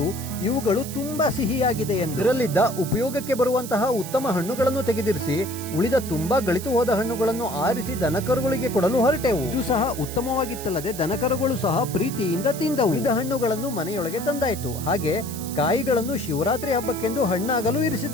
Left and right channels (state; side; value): noise; right; hiss, 11 dB below the sound